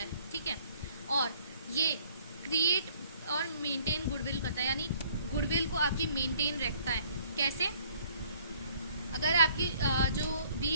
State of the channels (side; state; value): both; inverted; correlation -0.59